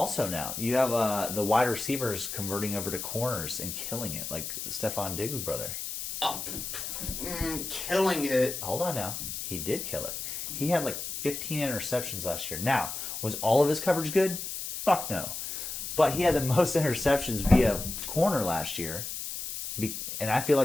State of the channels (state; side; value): noise; left; hiss, 6 dB below the sound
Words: now. You have the wide receivers converting over to corners and killing it, like Stephon Diggs' brother. Killing it. Hold on now. He did kill it. He had like 15 interceptions last year. Now, was all of his coverage good? Fuck no. But he had the most interceptions via corner last year. And I feel